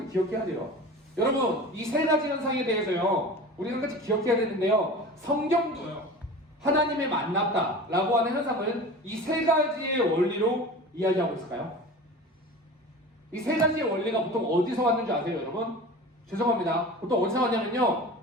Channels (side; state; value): both; normal; correlation 0.35